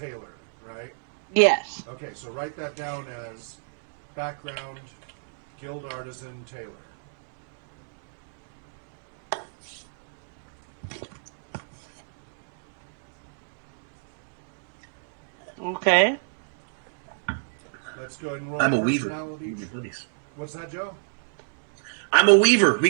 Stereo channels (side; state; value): left; silent; 61 dB below the other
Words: right? Yes. Okay, so write that down as background, guild artisan, tailor. Okay. Let's go ahead and roll I'm a weaver. personality. We can be buddies. What's that, Joe? I'm a weaver. We